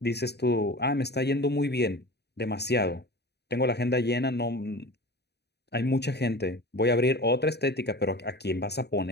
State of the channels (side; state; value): right; late; 0.48 ms